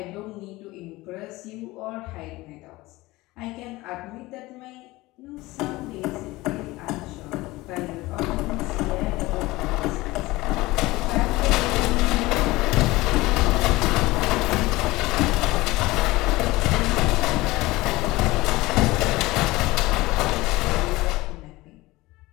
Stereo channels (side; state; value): right; quieter; 20.0 dB